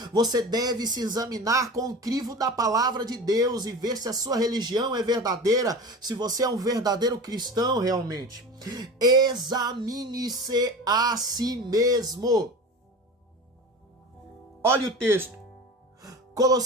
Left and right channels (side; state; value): both; normal; correlation 0.33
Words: Você deve se examinar com o crivo da palavra de Deus e ver se a sua religião é verdadeira, se você é um verdadeiro cristão realmente. Examine-se a si mesmo. Olha o texto.